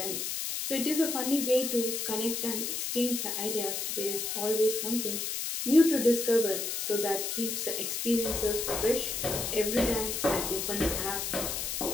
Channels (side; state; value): left; noise; hiss, 2 dB below the sound